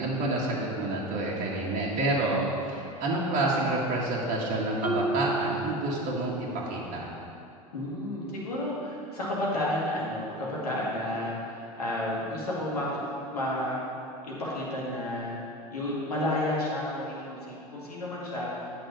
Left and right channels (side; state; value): both; normal; correlation 0.30